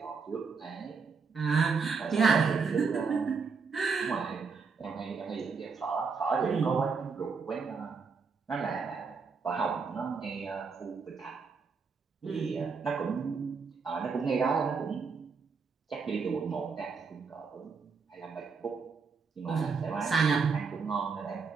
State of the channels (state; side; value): quieter; left; 5.1 dB